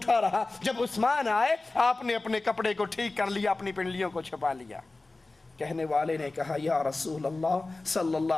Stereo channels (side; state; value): right; quieter; 3.2 dB